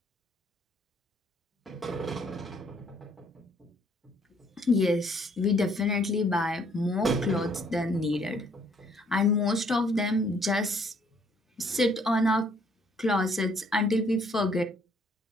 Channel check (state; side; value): normal; both; correlation 0.64